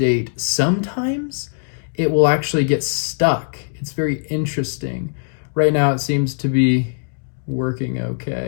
sometimes it will actually get stuck. It's very interesting. Right now it seems to be working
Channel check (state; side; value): silent; right; digital silence